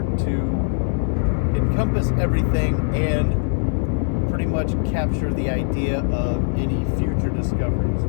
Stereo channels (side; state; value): right; silent; digital silence